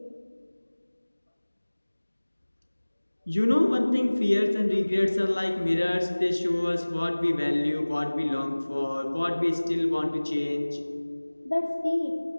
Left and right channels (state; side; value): inverted; both; correlation -1.00